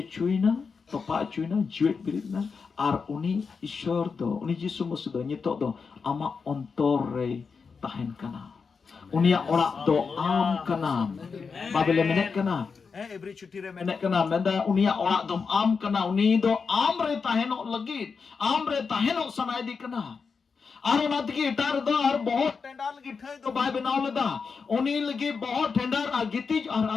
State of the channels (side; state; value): right; quieter; 5.3 dB